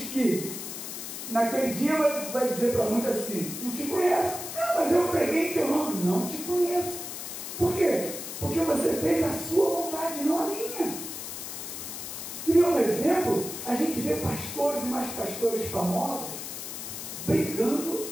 que naquele dia vai dizer para muitos assim, não te conheço. Não, mas eu preguei em teu nome. Não te conheço. Por quê? Porque você fez a sua vontade, não a minha. E um exemplo, a gente vê pastores e mais pastores famosos brigando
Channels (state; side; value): noise; left; hiss, 8 dB below the sound